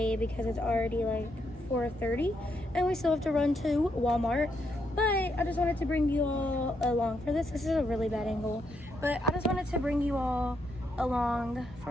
because it's already like 4:30 and we still have to run to Walmart. But I just wanted to bring you all along for this. This is a really bad angle, but I just wanted to bring you all along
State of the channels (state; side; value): normal; both; correlation 0.78